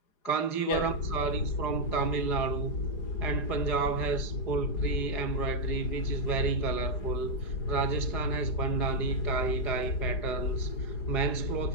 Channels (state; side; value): late; right; 4.9 ms